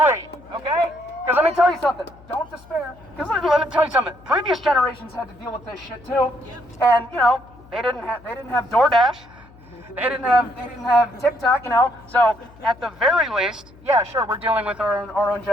okay? Because let me tell you something, don't despair. Because let me tell you something, previous generations had to deal with this shit too. And, they didn't have DoorDash. They didn't have TikTok, So at the very least, yeah, sure, we're dealing with our own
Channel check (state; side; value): noise; left; hum, 24 dB below the sound